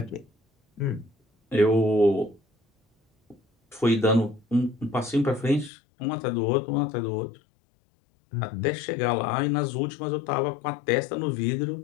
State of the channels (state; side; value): drops out; right; at 5.7 s